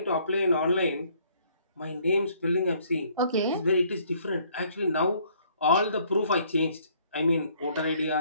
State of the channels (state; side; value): inverted; both; correlation -0.63